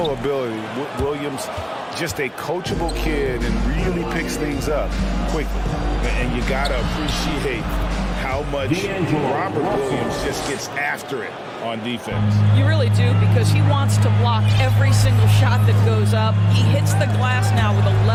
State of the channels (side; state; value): both; identical; correlation 1.00